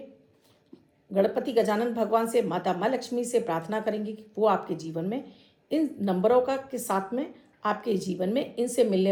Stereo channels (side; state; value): both; identical; correlation 1.00